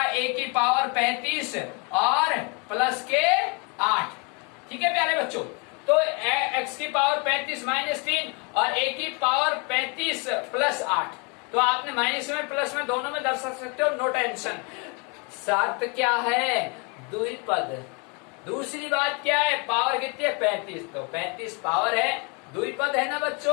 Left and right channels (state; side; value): quieter; right; 32.6 dB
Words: a की पावर 35 और प्लस के 8। ठीक है प्यारे बच्चों, तो x की पावर 35 माइनस 3 और a की पावर 35 प्लस 8, तो आपने माइनस में प्लस में दोनों में दर्शा सकते हो, नो टेंशन। शर्त क्या है द्विपद, दूसरी बात क्या है पावर कितनी है 35, तो 35 पावर है, द्विपद है ना